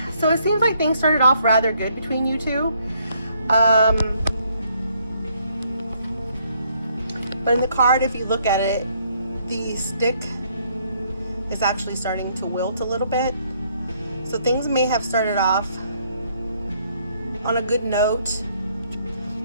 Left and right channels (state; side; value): inverted; both; correlation -0.69